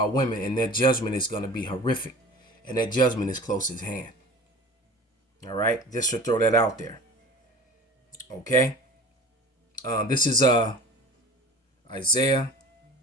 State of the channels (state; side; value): normal; both; correlation 0.40